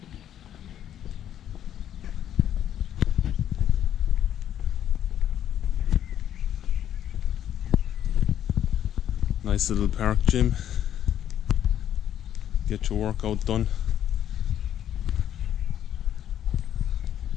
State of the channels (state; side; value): quieter; right; 10.5 dB